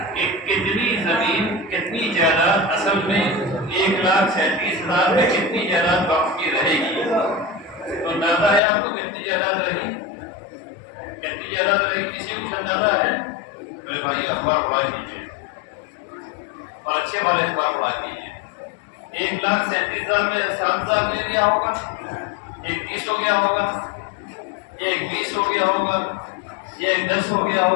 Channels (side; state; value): right; drops out; at 8.6 s